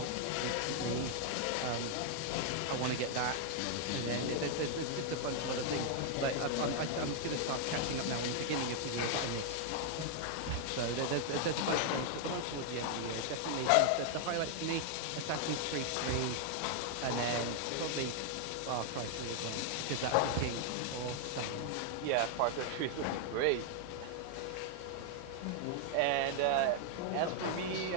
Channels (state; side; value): different; both; correlation 0.00